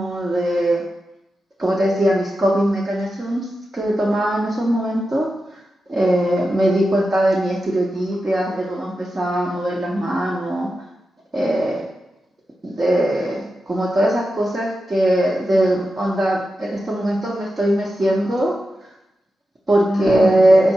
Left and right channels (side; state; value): both; normal; correlation 0.90